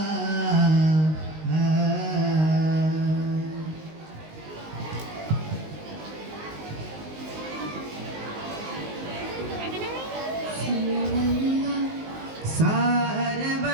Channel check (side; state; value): left; late; 19 ms